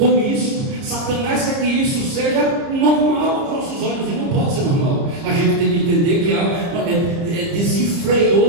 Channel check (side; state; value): left; late; 30 ms